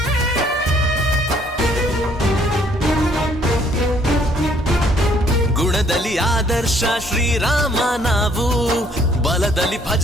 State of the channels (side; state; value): both; normal; correlation 0.64